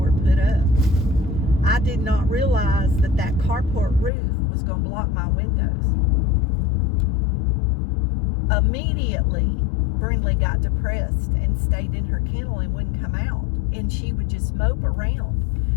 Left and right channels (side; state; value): right; drops out; at 4.1 s